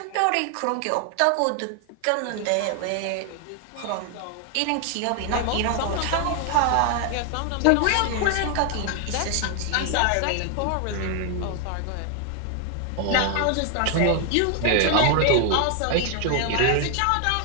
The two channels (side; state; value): both; different; correlation 0.00